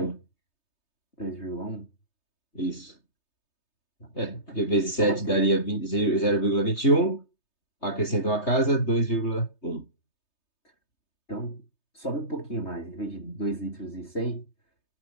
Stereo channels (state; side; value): late; right; 3.3 ms